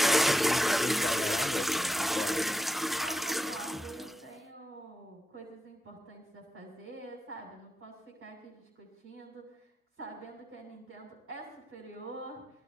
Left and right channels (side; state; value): both; normal; correlation 0.88